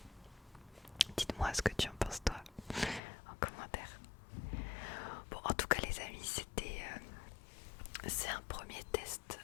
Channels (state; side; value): drops out; right; at 3.0 s